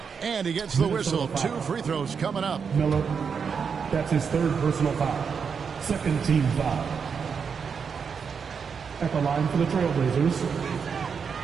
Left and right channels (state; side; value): quieter; left; 6.2 dB